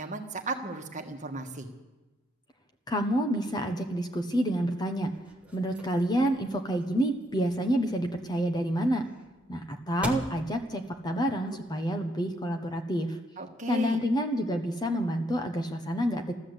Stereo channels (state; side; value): normal; both; correlation 0.73